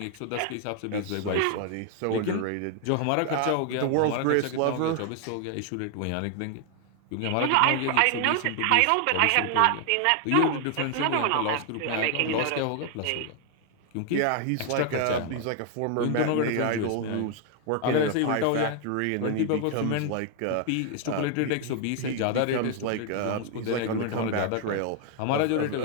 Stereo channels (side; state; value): both; different; correlation 0.00